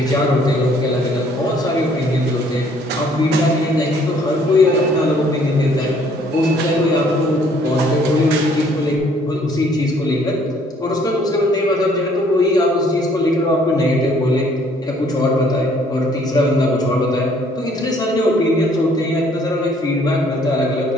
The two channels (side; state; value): both; normal; correlation 0.61